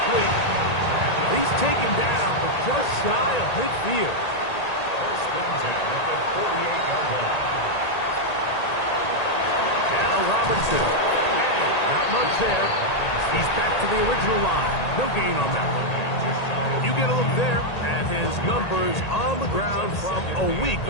He's taken down, but just shy of midfield. First and 10 at the 48-yard line. Now Robinson. And not much there. He's back to the original line. No gain on that one. You get a look there at his numbers on the ground from a week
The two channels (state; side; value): late; right; 1.8 ms